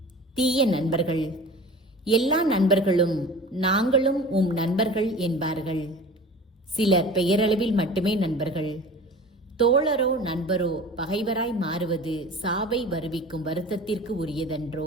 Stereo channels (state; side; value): normal; both; correlation 0.39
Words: தீய நண்பர்கள். எல்லா நண்பர்களும் நாங்களும் உம் நண்பர்கள் என்பார்கள். சிலர் பெயரளவில் மட்டுமே நண்பர்கள். தோழரோ நண்பரோ பகைவராய் மாறுவது சாவை வருவிக்கும் வருத்தத்திற்கு